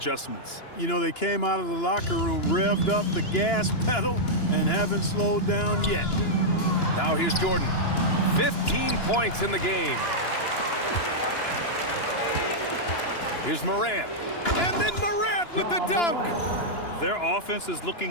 You know, they came out of the locker room, revved up the gas pedal, and haven't slowed down yet. Now here's Jordan. 15 points in the game. Here's Morant. And then Morant with the dunk. Their offense is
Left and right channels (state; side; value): late; right; 2.9 ms